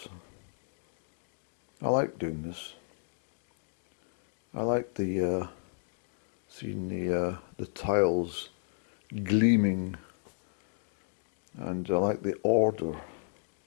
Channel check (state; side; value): silent; right; digital silence